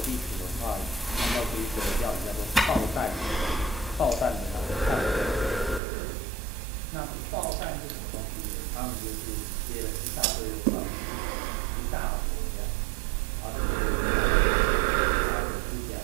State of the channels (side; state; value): left; drops out; at 5.8 s